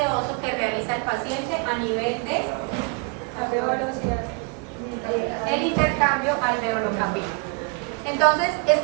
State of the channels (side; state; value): left; quieter; 32.0 dB